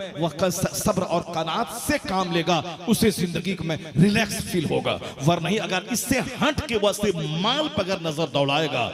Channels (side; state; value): both; identical; correlation 1.00